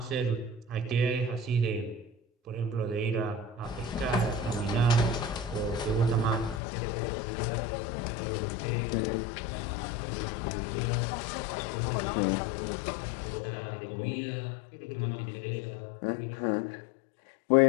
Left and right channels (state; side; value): drops out; right; at 6.6 s